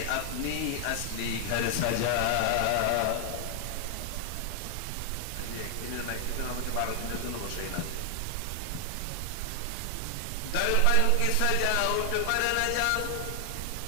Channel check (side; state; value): both; different; correlation 0.00